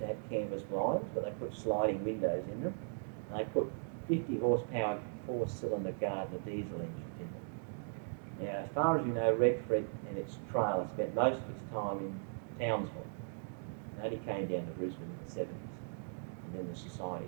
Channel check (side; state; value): left; silent; digital silence